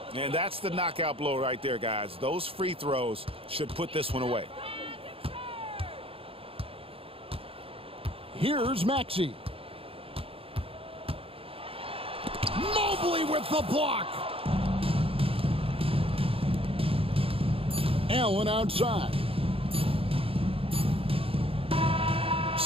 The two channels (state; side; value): late; left; 0.27 ms